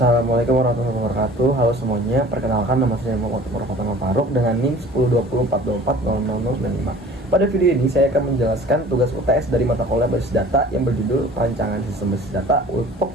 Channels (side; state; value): both; normal; correlation 0.47